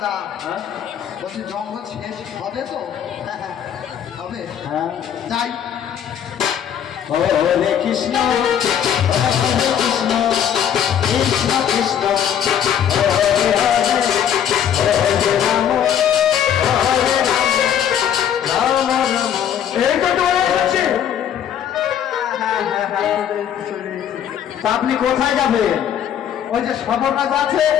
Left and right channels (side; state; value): right; quieter; 9.3 dB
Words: হ্যাঁ? বলছি জঙ্গল শেষ হবে তো? হবে, হ্যাঁ। যাই। হরে কৃষ্ণ হরে কৃষ্ণ কৃষ্ণ কৃষ্ণ হরে হরে হরে রাম হরে রাম রাম রাম। এই তো চলে যাচ্ছে। তা আপনি কোথায় যাবেন? ওই যে সবর রাজা আছে,